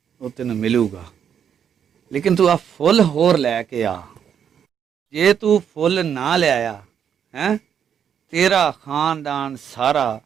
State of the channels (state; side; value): quieter; left; 8.3 dB